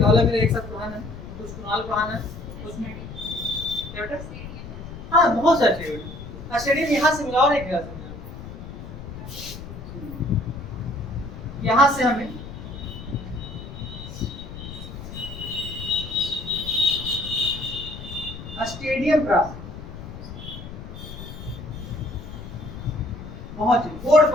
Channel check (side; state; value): left; noise; rumble, 11 dB below the sound